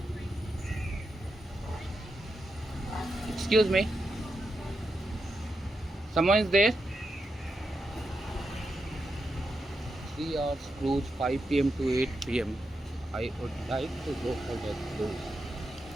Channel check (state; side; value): normal; both; correlation 0.86